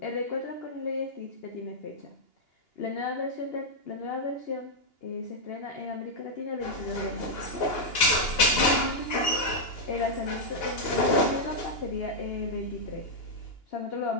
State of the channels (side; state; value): right; late; 2.8 ms